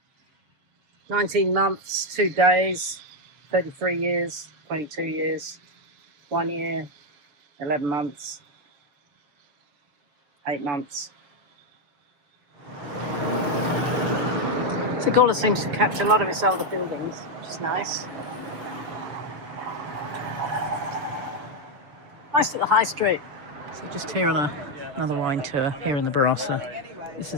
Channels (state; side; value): late; left; 6.8 ms